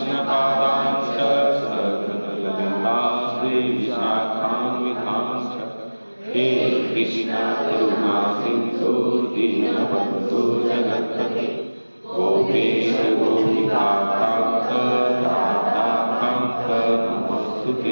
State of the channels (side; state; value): both; inverted; correlation -1.00